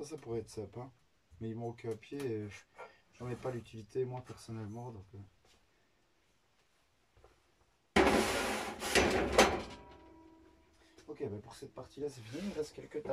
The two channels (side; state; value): both; identical; correlation 1.00